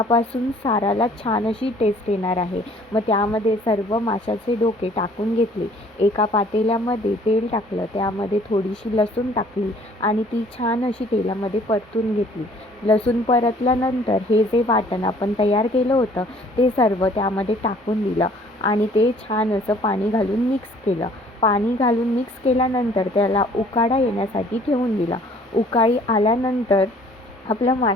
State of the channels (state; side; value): normal; both; correlation 0.56